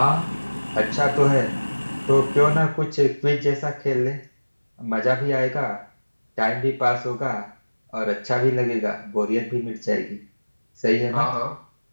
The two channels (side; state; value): both; inverted; correlation -1.00